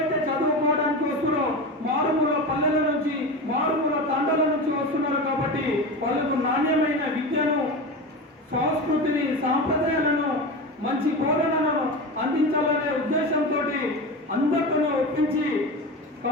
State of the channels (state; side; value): normal; both; correlation 0.25